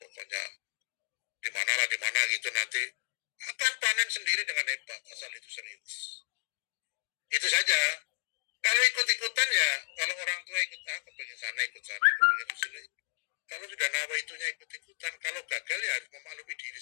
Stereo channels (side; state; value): right; silent; digital silence